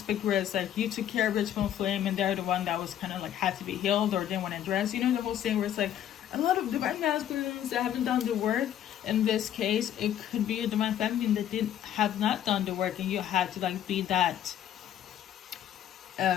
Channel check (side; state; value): right; quieter; 10.7 dB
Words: where it's like you took care of your twin flame, and they're the one that was kind of like had to be healed or didn't want to address. The whole thing where it's like a lot of divine masculines that haven't done the work. In this case, it could be a divine feminine that have not done the work, and you had to like be that